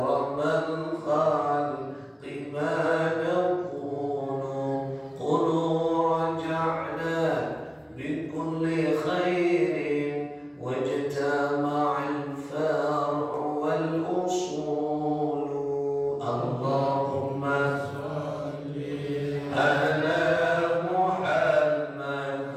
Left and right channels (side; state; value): both; identical; correlation 1.00